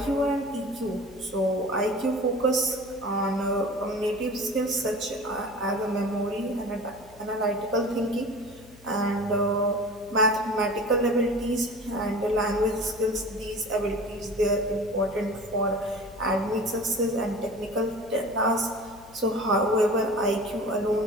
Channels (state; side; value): noise; left; hum, 24 dB below the sound